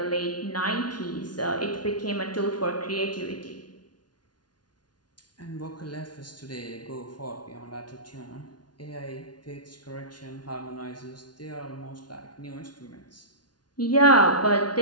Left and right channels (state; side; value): late; right; 0.70 ms